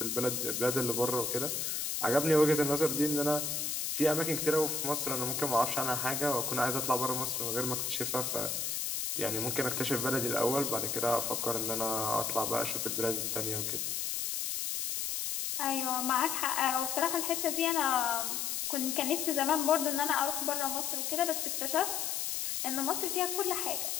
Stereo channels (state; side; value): noise; left; hiss, 1 dB below the sound